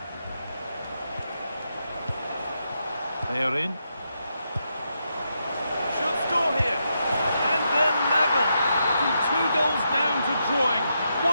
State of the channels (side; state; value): both; inverted; correlation -0.83